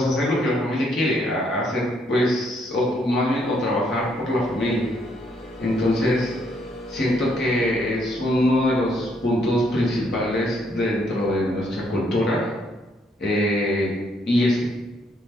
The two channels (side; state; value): both; normal; correlation 0.71